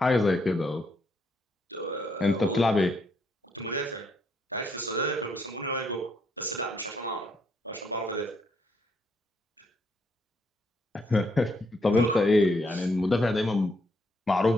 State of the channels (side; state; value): both; normal; correlation 0.74